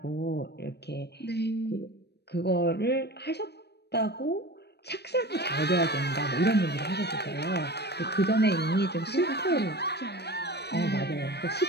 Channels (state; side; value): late; right; 0.48 ms